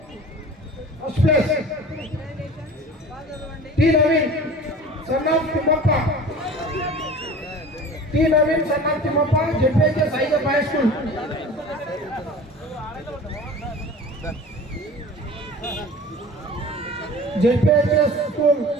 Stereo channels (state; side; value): normal; both; correlation 0.40